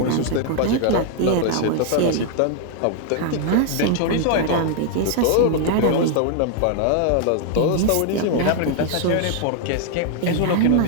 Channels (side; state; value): both; different; correlation 0.00